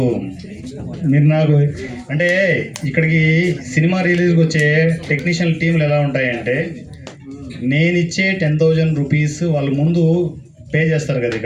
మీరు నాకు అంటే ఇక్కడికి సినిమా రిలీజ్కి వచ్చే టెక్నీషియన్ టీంలు ఎలా ఉంటాయంటే, నేను ఇచ్చే 10,000 రూపీస్ వాళ్ళు ముందు పే చేస్తారు కదా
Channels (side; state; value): both; identical; correlation 1.00